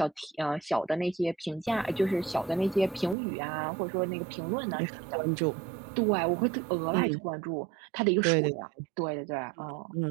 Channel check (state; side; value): drops out; left; at 3.2 s